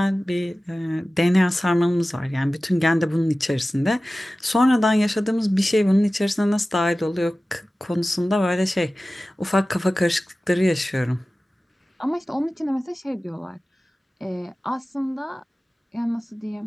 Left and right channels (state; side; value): normal; both; correlation 0.96